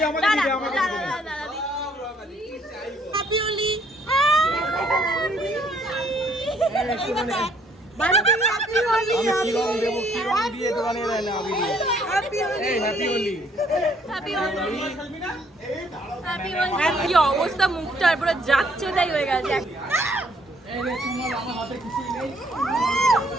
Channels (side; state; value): both; normal; correlation 0.65